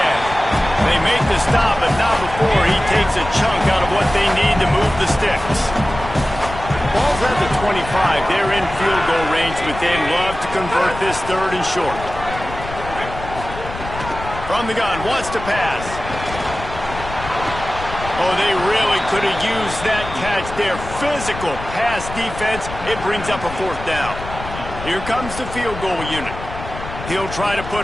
They make the stop, but not before he takes a chunk out of what they need to move the sticks. Ball's at the 25. They're in field goal range, but they'd love to convert this 3rd and short. From the gun, wants to pass. Oh, they really could have used that catch there. Physical pass defense. It brings up a 4th down. Here comes the field goal unit. He'll try to put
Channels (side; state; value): left; noise; rumble, 11 dB below the sound